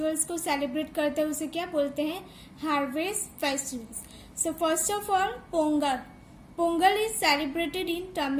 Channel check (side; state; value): both; identical; correlation 1.00